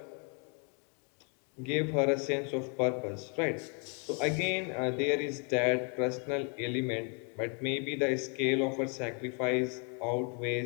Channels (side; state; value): right; quieter; 38.1 dB